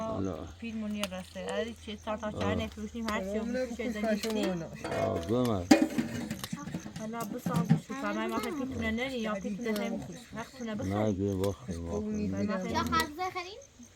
Pil munir rastı. Hadi çiğ tartar çayne piştim her şey bu şeyden gitti. گمه Hala bu sağ şu kamay masa pitine ne ya pitine hem hakkına bu. نه گه باخت لا خالص خلين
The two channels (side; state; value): both; identical; correlation 1.00